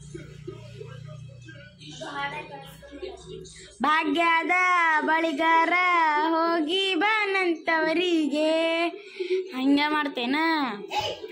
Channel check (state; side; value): identical; both; correlation 1.00